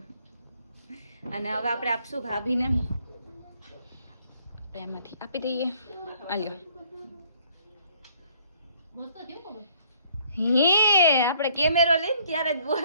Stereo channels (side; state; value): both; inverted; correlation -0.62